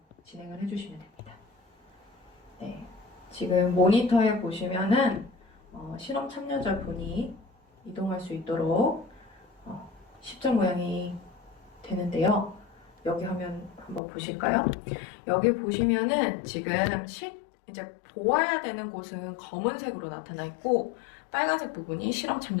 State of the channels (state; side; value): drops out; right; at 14.0 s